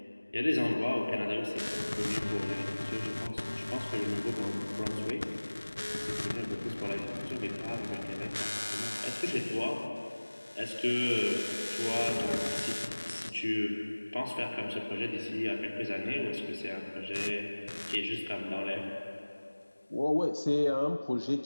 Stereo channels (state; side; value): inverted; both; correlation -1.00